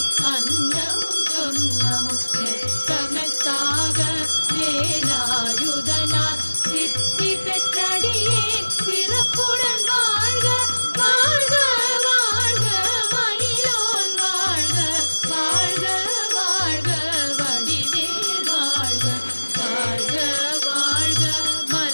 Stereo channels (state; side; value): inverted; both; correlation -1.00